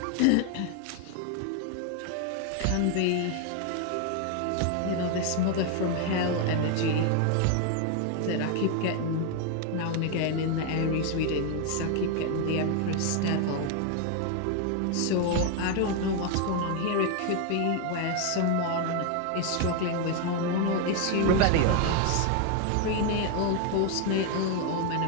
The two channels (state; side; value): different; both; correlation 0.01